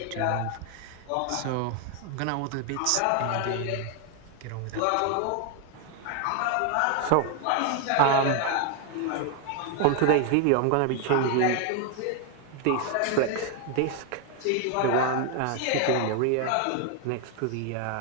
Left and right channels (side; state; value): both; different; correlation 0.00